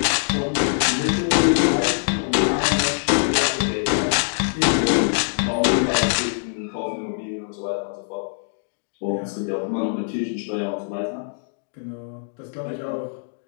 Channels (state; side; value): silent; right; digital silence